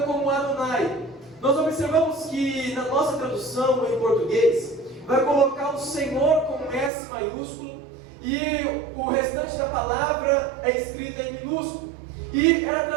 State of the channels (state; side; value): drops out; left; at 6.9 s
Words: como Adonai. Nós observamos que na nossa tradução em português, vai colocar o Senhor com S maiúsculo, e o restante da palavra é escrita em minúsculo, e era